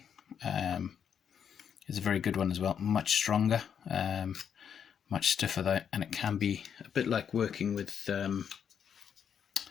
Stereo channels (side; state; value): right; quieter; 7.9 dB